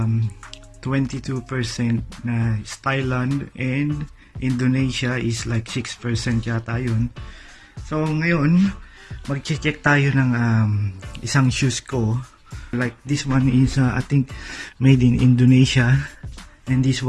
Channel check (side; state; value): both; identical; correlation 1.00